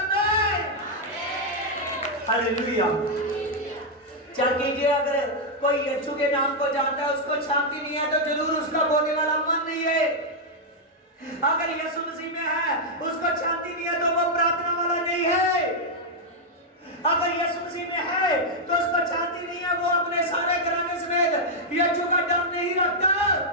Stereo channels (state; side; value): normal; both; correlation -0.03